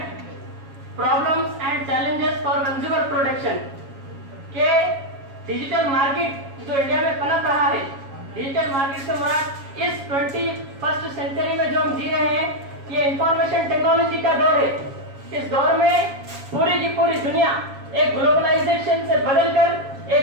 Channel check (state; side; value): late; left; 7.3 ms